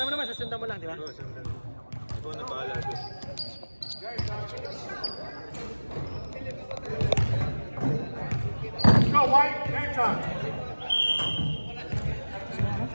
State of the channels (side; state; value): both; inverted; correlation -1.00